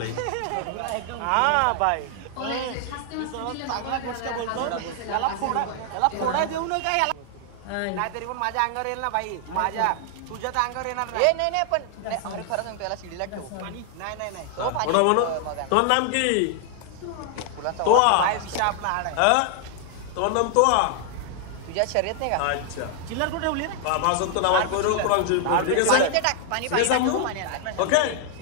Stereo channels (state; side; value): different; both; correlation 0.00